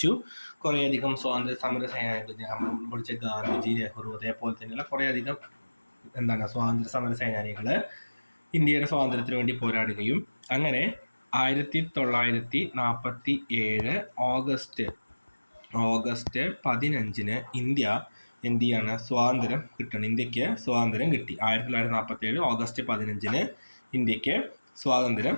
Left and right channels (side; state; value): both; inverted; correlation -1.00